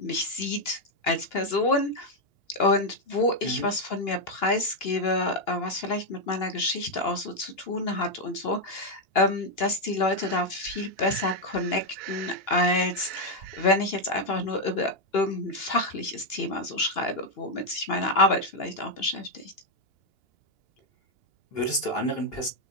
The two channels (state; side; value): late; right; 2.9 ms